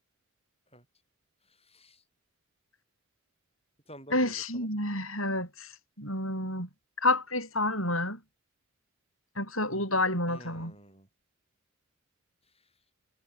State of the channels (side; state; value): both; normal; correlation 0.04